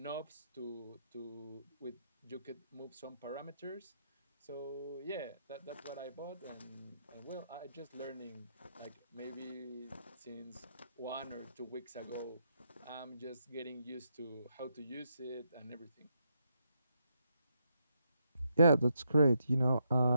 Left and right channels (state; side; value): inverted; both; correlation -0.79